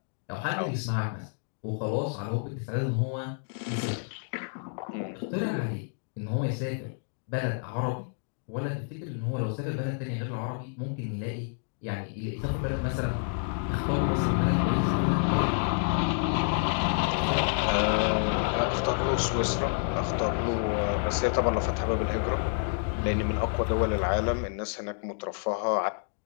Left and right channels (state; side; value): silent; right; 59 dB below the other